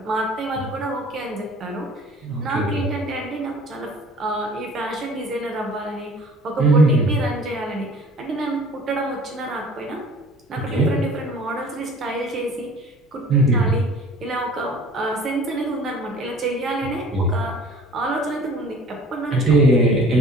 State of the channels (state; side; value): normal; both; correlation 0.48